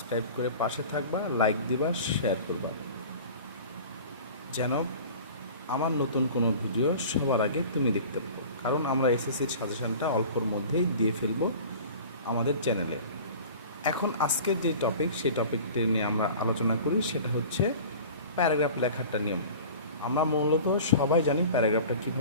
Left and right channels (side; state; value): both; inverted; correlation -0.40